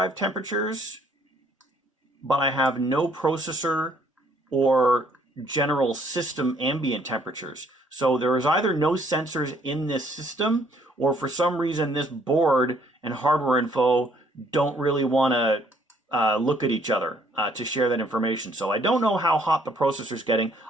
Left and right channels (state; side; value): normal; both; correlation 0.64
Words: temperatures, but I have no processor or general system ambient temperatures. So there is either no sensors in this system, or for some reason this board and hardware info don't really want to look at each other to share that information. So I don't know how hot the processor's getting.